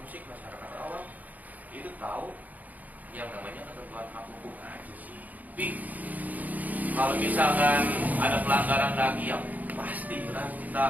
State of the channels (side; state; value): left; late; 0.078 ms